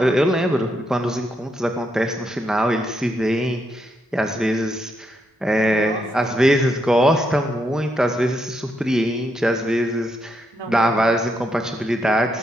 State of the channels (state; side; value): normal; both; correlation 0.79